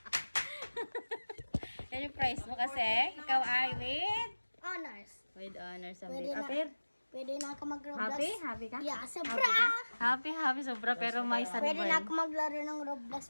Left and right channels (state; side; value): inverted; both; correlation -1.00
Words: Yan yung price mo kasi. Ikaw ay Honors. with honors ang Pwede bit. na. Apir? Pwede na ako mag-Roblox. Happy? Happy ka? Yeah, sobra. Happy ka? Happy sobra pero may Pwede na sunburn. ako maglaro ng